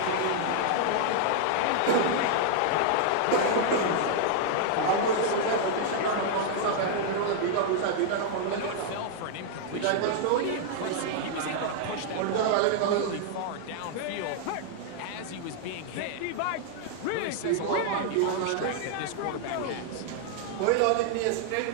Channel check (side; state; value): both; different; correlation -0.01